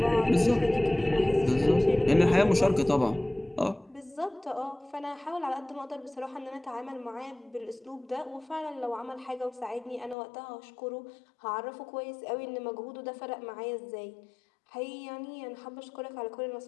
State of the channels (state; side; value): drops out; right; at 10.2 s